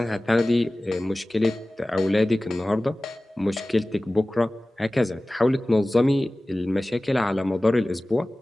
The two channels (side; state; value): both; normal; correlation 0.97